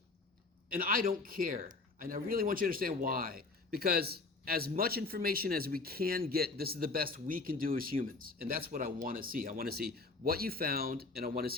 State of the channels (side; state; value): right; quieter; 3.7 dB